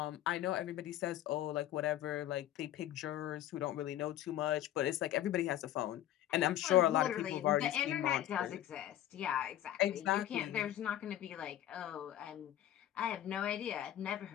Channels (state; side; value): quieter; right; 12.5 dB